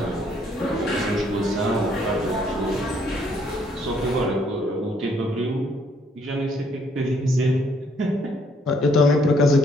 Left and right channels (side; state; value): both; normal; correlation 0.67